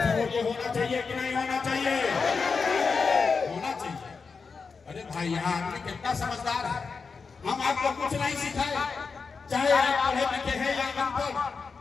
होना चाहिए कि नहीं होना चाहिए? होना चाहिए। अरे भाई, यहाँ आदमी कितना समझदार है। हम आपको कुछ नहीं सिखाए, चाहे आप पढ़े लिखे हैं या अनपढ़,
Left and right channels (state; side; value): quieter; right; 5.0 dB